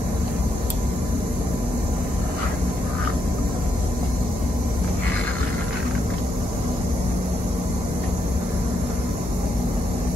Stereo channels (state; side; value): normal; both; correlation 0.79